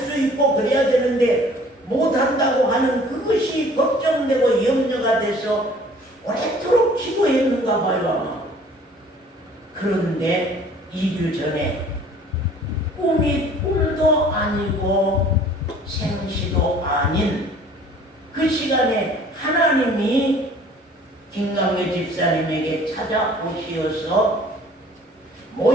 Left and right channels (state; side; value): normal; both; correlation 0.52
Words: 있고 그래야 되는데 못한다고 하는 그것이 걱정되고 염려가 돼서 오랫도록 기도했는가 봐요. 그런데 2주 전에 꿈이 꿈도 아니고 생시도 아닌 그 시간에 하나님이 김강회 집사님에게 찾아오시어서